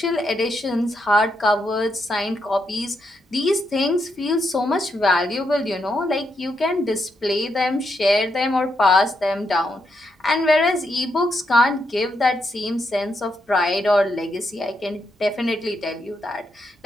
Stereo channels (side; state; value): both; normal; correlation 0.80